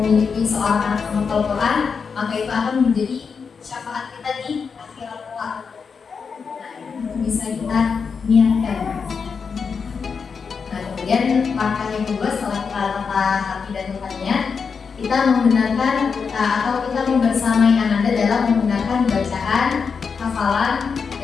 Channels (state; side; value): quieter; right; 5.7 dB